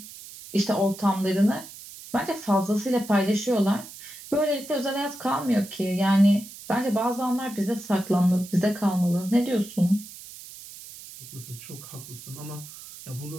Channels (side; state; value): right; noise; hiss, 15 dB below the sound